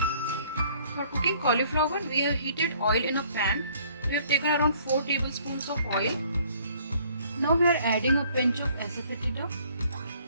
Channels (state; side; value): inverted; both; correlation -0.60